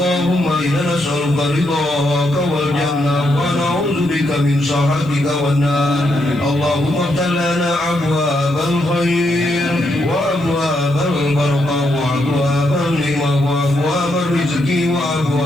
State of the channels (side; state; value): left; noise; hiss, 29 dB below the sound